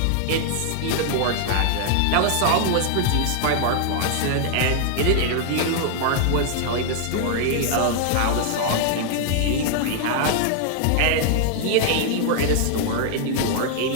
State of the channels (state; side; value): different; both; correlation 0.00